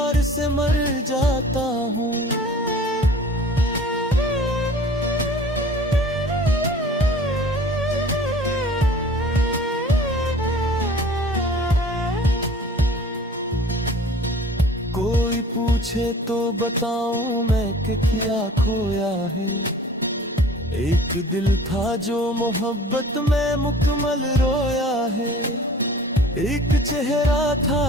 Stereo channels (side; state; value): both; normal; correlation 0.46